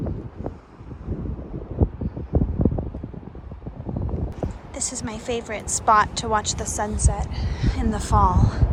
This is my favorite spot to watch the sunset in the fall.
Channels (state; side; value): identical; both; correlation 1.00